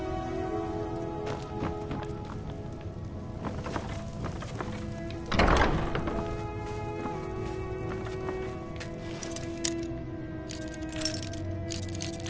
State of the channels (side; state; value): both; identical; correlation 1.00